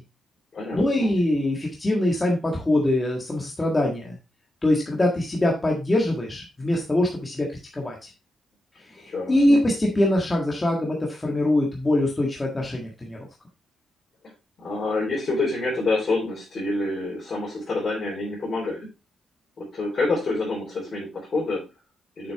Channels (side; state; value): both; normal; correlation 0.87